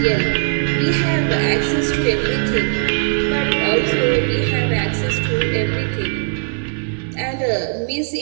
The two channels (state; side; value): silent; left; 67 dB below the other